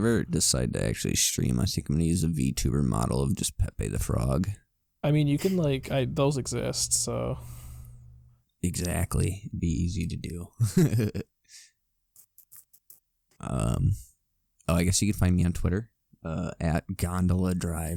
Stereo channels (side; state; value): both; identical; correlation 1.00